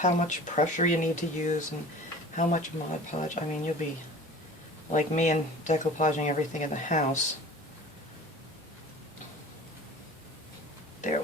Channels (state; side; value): normal; both; correlation 0.41